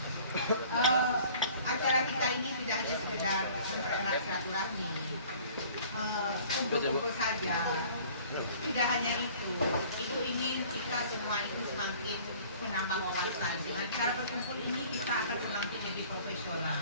Acara kita ini tidak hanya sekedar mempererat silaturahmi, kumpul-kumpul saja. Tidak hanya itu ingin kita semua itu semakin menambah wawasan. Dengan cara berkumpul ini kita akan semakin lebih profesional.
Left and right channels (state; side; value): inverted; both; correlation -0.50